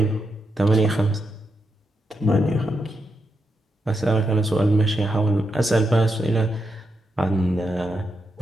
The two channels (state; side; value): normal; both; correlation 0.84